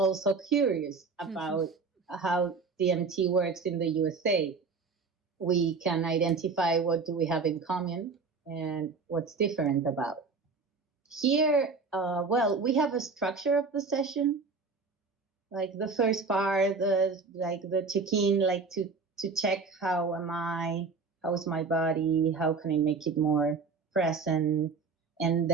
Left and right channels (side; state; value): left; quieter; 4.5 dB